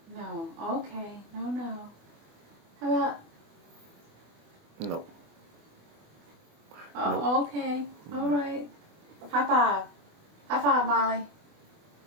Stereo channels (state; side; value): late; left; 24 ms